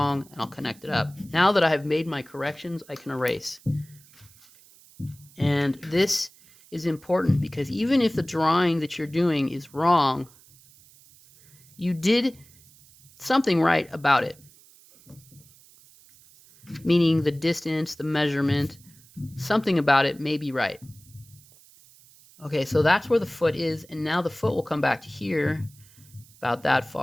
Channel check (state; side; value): noise; right; hiss, 26 dB below the sound